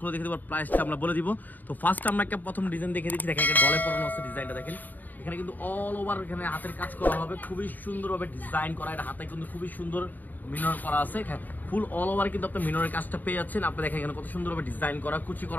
দেখে দেবো, প্রাইসটা আমরা বলে দিব। তো ফার্স্ট আমরা একটা প্রথম ডিজাইন দেখে দিচ্ছি, দেখেন গলে পরানো আছে ডিজাইনটা দেখেন। এখানে কিন্তু অল ওভার এখানে হাতের কাজ করা হবে, খুবই সুন্দরভাবে ডিজাইন করা, এটা হাতে কিন্তু খুবই সুন্দর মিনর করা আছে, ফুল অল ওভার কিন্তু আপনি মিনরের কাজটা পেয়ে যাচ্ছেন। আপনি দেখেন এখানে কত সুন্দরভাবে ডিজাইন করা, কুচি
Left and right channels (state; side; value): late; right; 0.085 ms